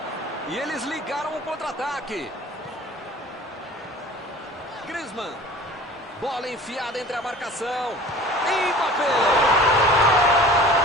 E eles ligaram o contra-ataque. Griezmann. Bola enfiada entre a marcação. Mbappé.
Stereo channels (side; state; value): both; normal; correlation 0.43